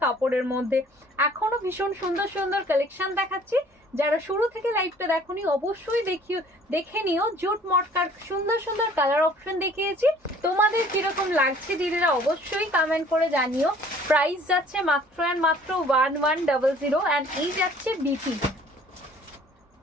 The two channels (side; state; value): both; normal; correlation 0.54